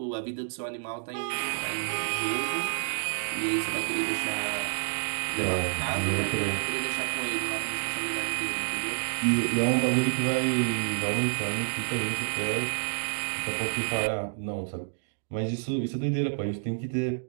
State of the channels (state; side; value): silent; left; digital silence